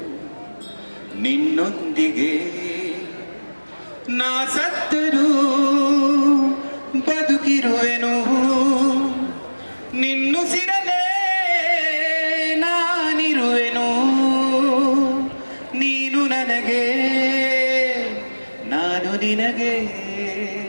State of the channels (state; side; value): inverted; both; correlation -1.00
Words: ನಿನ್ನೊಂದಿಗೆ, ನಾ ಸತ್ತರೂ ಬದುಕಿರುವೆನು ನಿನ್ನುಸಿರಲೇ ನಾನಿರುವೆನು, ನೀನು ನನಗೆ ನಾನು ನಿನಗೆ